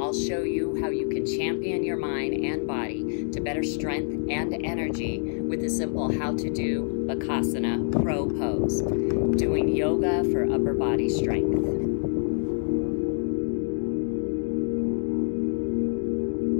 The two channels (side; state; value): right; silent; digital silence